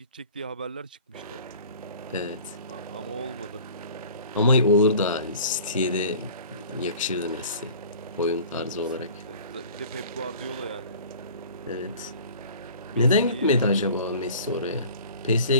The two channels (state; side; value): inverted; both; correlation -0.46